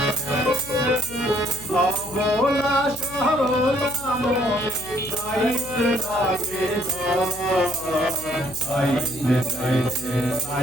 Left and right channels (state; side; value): noise; left; hum, 17 dB below the sound